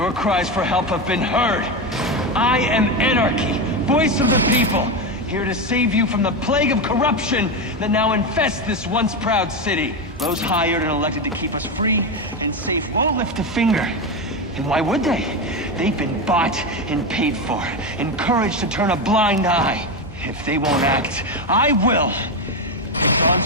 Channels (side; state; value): both; normal; correlation 0.14